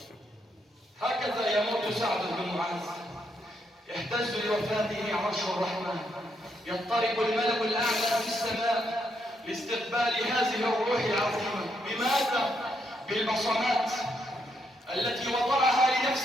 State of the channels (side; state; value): both; normal; correlation 0.77